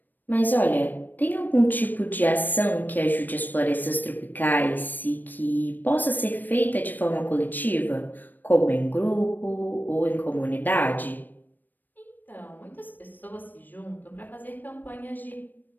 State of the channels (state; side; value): late; right; 0.089 ms